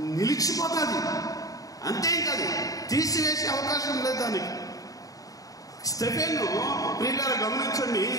నిలిచిపోతుంది. అంతేకాదు, తీసివేసే అవకాశం లేదు దానికి. స్టెఫెను ప్రియులారా గమనించండి,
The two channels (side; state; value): right; late; 0.17 ms